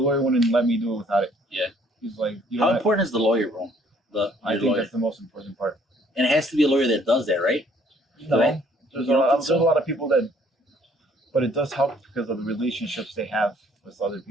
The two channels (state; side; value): normal; both; correlation 0.61